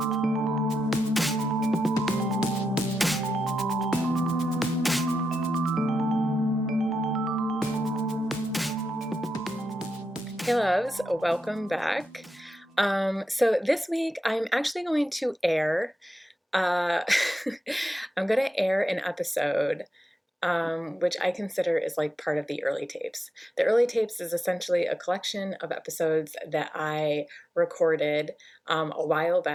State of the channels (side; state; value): both; normal; correlation 0.87